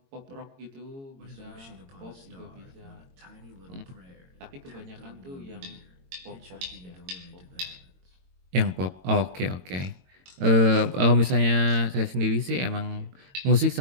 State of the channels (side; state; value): left; late; 22 ms